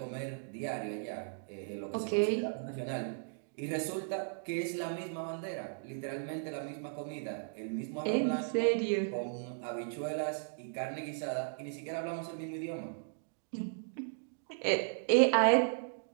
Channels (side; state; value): left; silent; digital silence